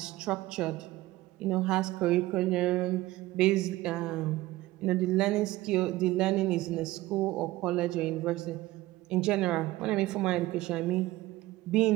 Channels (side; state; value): left; quieter; 17.7 dB